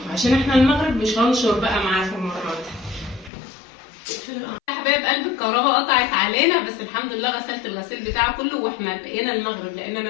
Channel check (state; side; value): drops out; right; at 3.3 s